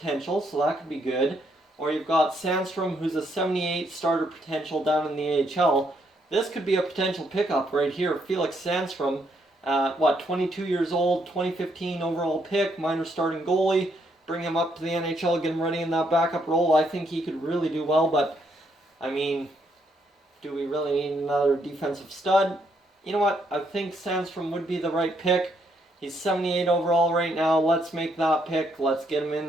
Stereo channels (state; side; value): normal; both; correlation 0.74